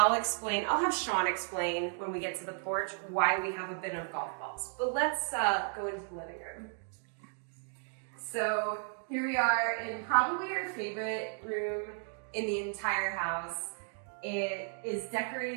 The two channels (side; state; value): left; silent; 55 dB below the other